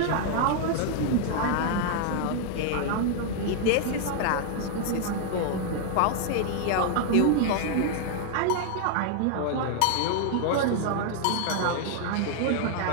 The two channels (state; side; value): different; both; correlation 0.00